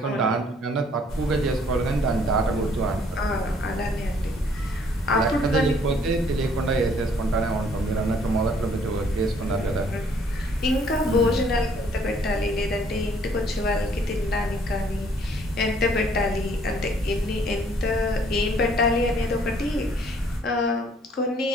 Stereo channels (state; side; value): normal; both; correlation 0.62